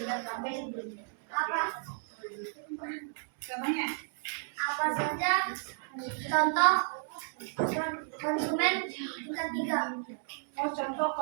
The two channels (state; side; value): silent; left; digital silence